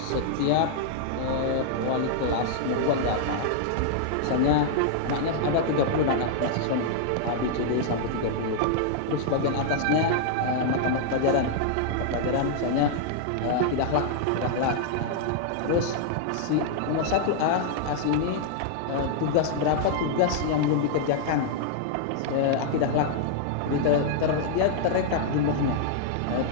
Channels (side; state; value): both; different; correlation -0.01